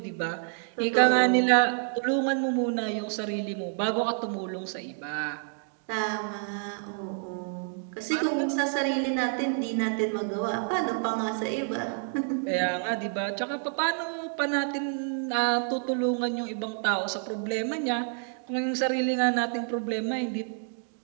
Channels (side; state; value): left; silent; 59 dB below the other